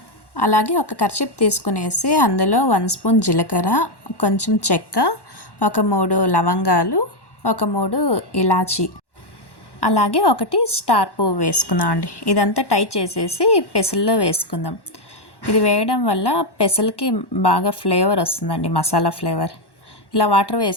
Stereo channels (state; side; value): late; right; 1.1 ms